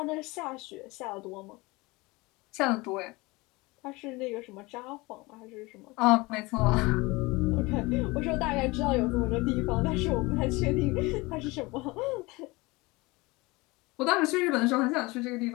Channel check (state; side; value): quieter; right; 23.4 dB